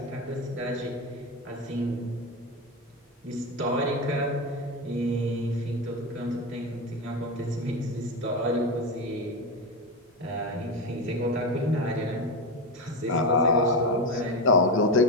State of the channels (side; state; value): both; normal; correlation 0.16